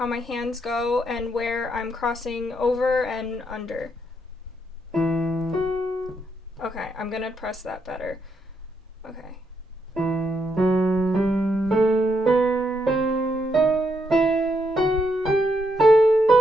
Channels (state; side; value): normal; both; correlation 0.78